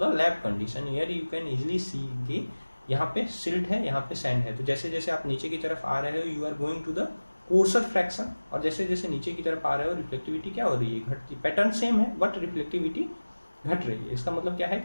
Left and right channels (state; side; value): inverted; both; correlation -1.00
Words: lab condition. Here you can easily सी कि यहाँ पे सिल्ट है, यहाँ पे सैंड है, तो जैसे जैसे आप नीचे की तरफ आ रहे हो you are going to the coarser fraction, और जैसे जैसे नीचे की तरफ आ रहे हो रिफ्लेक्टिविटी क्या हो रही है, घटती। पैटर्न सेम है बट रिफ्लेक्टिविटी घट रही है। इसका मतलब क्या है